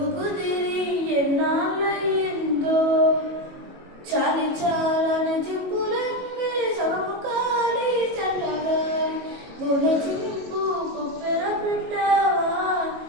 కుదిరి ఎన్నాళ్ళయిందో చాలి చాలని చింపులన్నీ సగము కాలి చల్లగాలి గున చింపు కుప్పెర పెట్టావా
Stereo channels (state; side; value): late; left; 22 ms